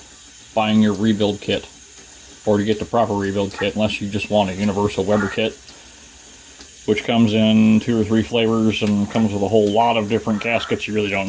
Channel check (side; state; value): both; identical; correlation 1.00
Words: buying your rebuild kit, or to get the proper rebuild kit, unless you just want a universal Weber kit, which comes in 2 or 3 flavors and comes with a whole lot of different gaskets you really don't